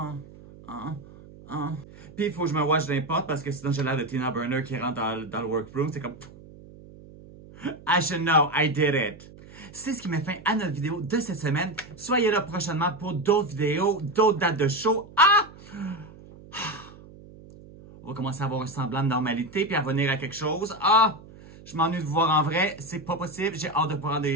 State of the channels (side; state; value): right; noise; hum, 20 dB below the sound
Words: Puis il faut que je me watch d'un pote parce que sinon j'ai l'air de Tina Burner qui rentre dans le workroom. C'est comme... I should know, I did it. C'est ce qui met fin à notre vidéo de cette semaine. Soyez là prochainement pour d'autres vidéos, d'autres dates de show. On va commencer à avoir un semblant de normalité puis à revenir à quelque chose. Je m'ennuie de vous voir en vrai. C'est pas possible. J'ai hâte de prendre